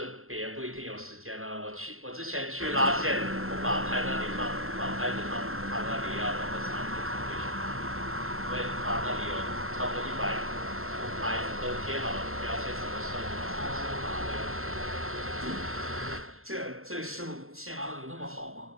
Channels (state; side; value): late; left; 0.62 ms